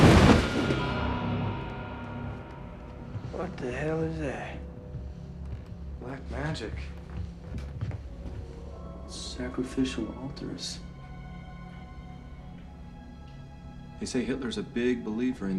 What the hell is that? Black magic. Sacrificial altars. They say Hitler's a big believer in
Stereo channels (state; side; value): identical; both; correlation 1.00